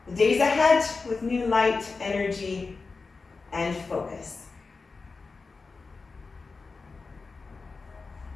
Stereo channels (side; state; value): right; quieter; 4.2 dB